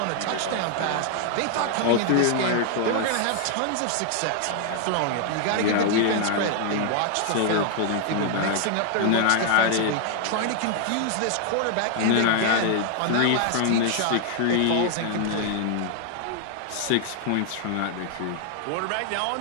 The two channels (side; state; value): both; different; correlation 0.00